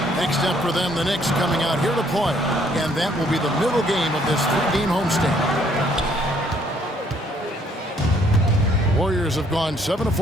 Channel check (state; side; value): normal; both; correlation 0.65